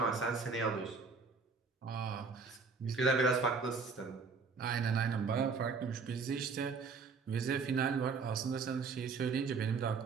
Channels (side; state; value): left; quieter; 4.9 dB